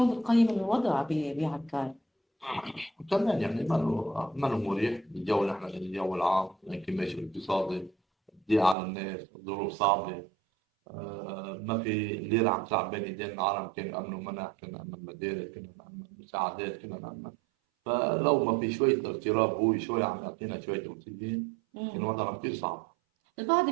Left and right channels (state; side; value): drops out; left; at 8.8 s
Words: بتقيم الوضع بعكار؟ كمان يعني ما له مريح الجو اللي احنا الجو العام، الانكماش الاقتصادي، الضيق على الناس، الظروف صعبه. ما في ليرة عم تلعب بين ايدين العالم، كان نأمنوا منح، كنا نأمن مدارس، كنا نأمن مساعدات، كنا نأمن. فلو ما في شوية اغتراب هو شوي عم يعطينا شوية أكسجين، كان وضعنا كثير صعب. البعض